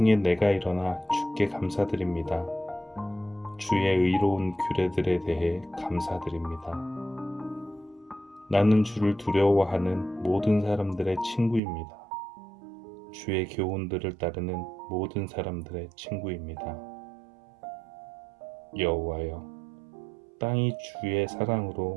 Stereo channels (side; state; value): left; drops out; at 11.6 s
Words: 내가 일어나 주께 감사드립니다. 주의 의로운 규례들에 대해 감사드립니다. 나는 주를 두려워하는 모든 사람들의 친구입니다. 주의 교훈들을 따르는 모든 사람들의 친구입니다. 여호와여, 땅이 주의